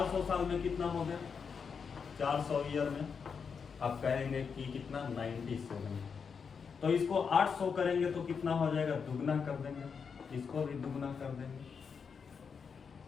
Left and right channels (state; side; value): quieter; right; 6.0 dB